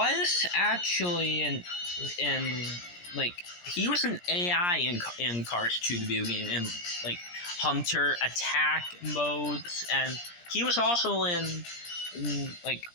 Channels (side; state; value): right; late; 17 ms